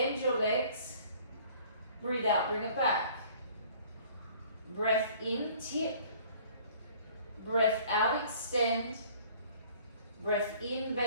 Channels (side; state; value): both; inverted; correlation -0.53